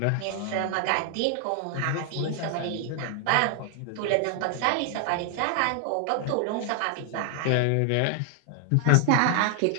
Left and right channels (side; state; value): both; different; correlation 0.00